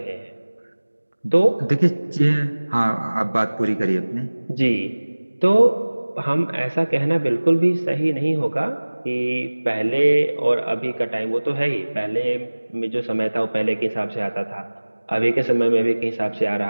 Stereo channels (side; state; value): both; inverted; correlation -1.00